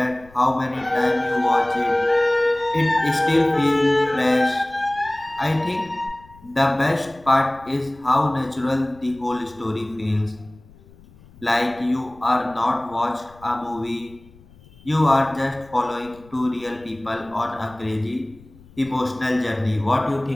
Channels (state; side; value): noise; left; rumble, 25 dB below the sound